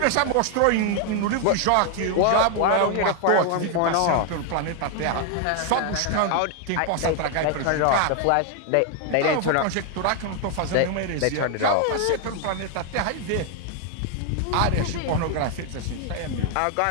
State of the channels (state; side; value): different; both; correlation 0.00